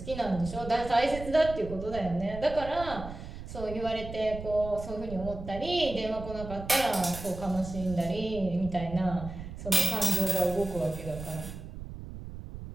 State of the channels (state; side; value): noise; right; rumble, 10 dB below the sound